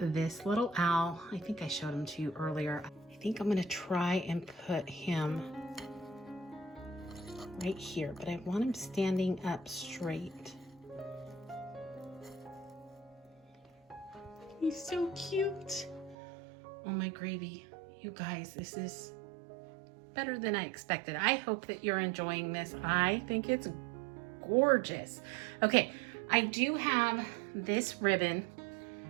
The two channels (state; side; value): drops out; left; at 16.2 s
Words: little owl. I think I showed him to you earlier. I think I'm gonna try and put him right here, but I want him standing up straight. He's so cute. Oh my gravy. You guys, this is better than I expected. I hope that you're enjoying this. I think it's gorgeous. Okay, I do have this ribbon